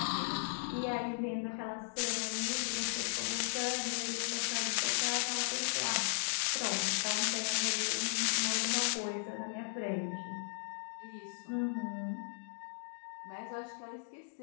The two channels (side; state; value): right; silent; digital silence